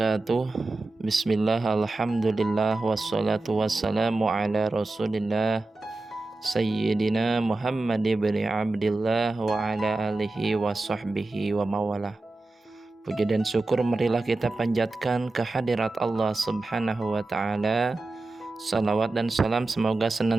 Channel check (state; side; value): quieter; left; 3.1 dB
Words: Bismillah, alhamdulillah, wassalatu wassalamu ala rasulillah Sayyidina Muhammad ibn Abdillah wa ala alihi wa sahbihi wa mawalah. Puji dan syukur marilah kita panjatkan kehadirat Allah subhanahu wa ta'ala. Salawat dan salam semoga